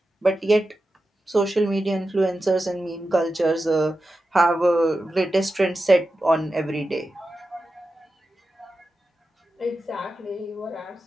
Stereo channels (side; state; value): both; normal; correlation 0.91